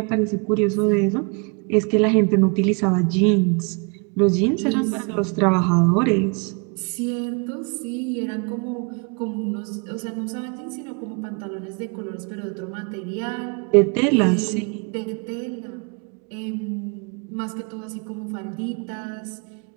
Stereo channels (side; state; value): left; quieter; 34.0 dB